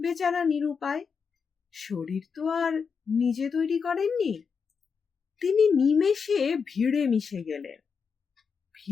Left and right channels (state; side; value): quieter; right; 5.9 dB